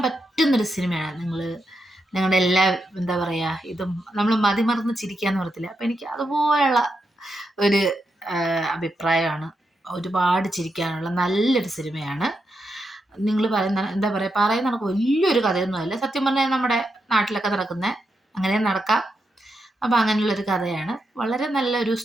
പറ്റുന്നൊരു സിനിമയാണ്. നിങ്ങളുടെ എല്ലാ എന്താ പറയുക, ഇതും നമ്മൾ മതിമറന്ന് ചിരിക്കാന്ന് പറയത്തില്ല, അപ്പം എനിക്ക് അതുപോലെയുള്ള ഒരു അഭിപ്രായമാണ്. ഒരുപാട് ചിരിക്കാനുള്ള നല്ലൊരു സിനിമയാണ്. നിങ്ങൾ പറയുന്ന എന്താ പറയുന്ന കണക്ക് വലിയൊരു കഥയൊന്നുമല്ല. സത്യം പറഞ്ഞാൽ നമ്മുടെ നാട്ടിലൊക്കെ നടക്കുന്ന അങ്ങനെ നടക്കാം. അപ്പം അങ്ങനെയുള്ളൊരു കഥയാണ്. വളരെ നല്ലൊരു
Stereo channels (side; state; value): both; normal; correlation 0.84